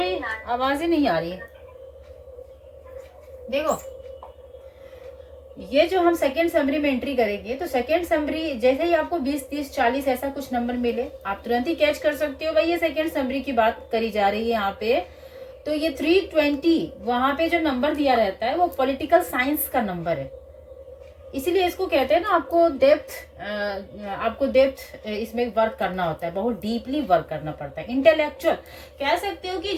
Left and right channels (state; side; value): identical; both; correlation 1.00